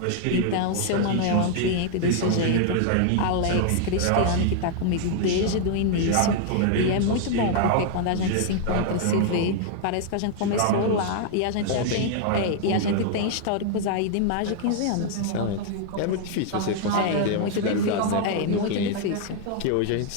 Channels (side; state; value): both; different; correlation 0.00